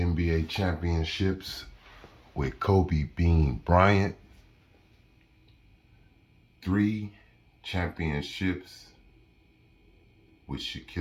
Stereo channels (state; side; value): identical; both; correlation 1.00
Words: championships with Kobe Bean Bryant, 3 championships with